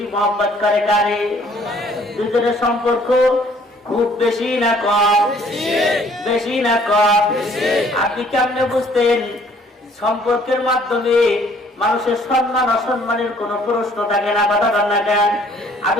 মহব্বত করে কারে? দুজনের সম্পর্ক খুব বেশি না কম? বেশি না কম? আপনি কেমনে বুঝতেন? সম্পর্কের মাধ্যমে মানুষের সম্মান অসম্মানের কোন প্রশ্ন থাকে না, কথা বল না কেন?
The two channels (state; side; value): normal; both; correlation 0.59